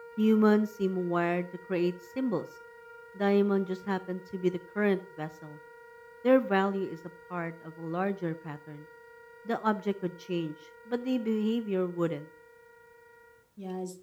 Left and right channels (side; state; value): both; identical; correlation 1.00